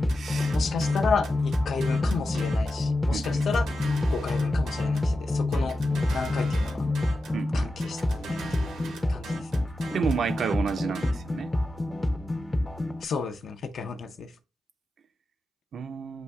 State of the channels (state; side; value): normal; both; correlation 0.90